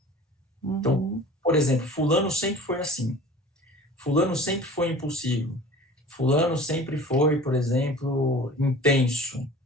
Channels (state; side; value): normal; both; correlation 0.42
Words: Então, por exemplo, fulano sempre foi assim, fulano sempre foi impulsivo, fulano sempre foi, por exemplo, intenso,